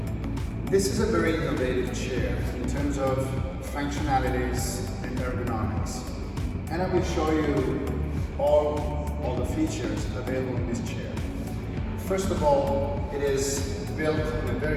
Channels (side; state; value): both; identical; correlation 1.00